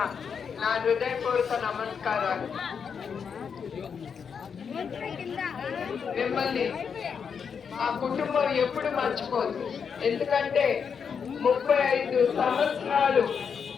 నా హృదయపూర్వక నమస్కారాలు. మిమ్మల్ని ఆ కుటుంబం ఎప్పుడు మర్చిపోదు. ఎందుకంటే 35 సంవత్సరాలు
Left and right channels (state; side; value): quieter; right; 6.6 dB